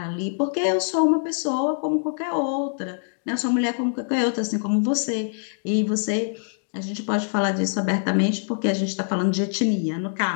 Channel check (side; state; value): right; silent; digital silence